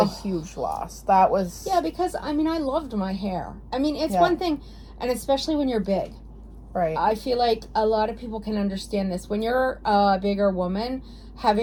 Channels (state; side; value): identical; both; correlation 1.00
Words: a huge loss. That was. Yeah, because I mean, I loved my hair. I mean, it's Yeah. one thing, and especially when you're big. Right. I feel like a lot of people can understand this. When you're a bigger woman,